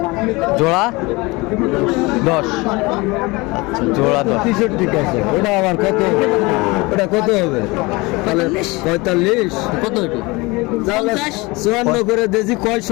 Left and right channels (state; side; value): quieter; right; 24.1 dB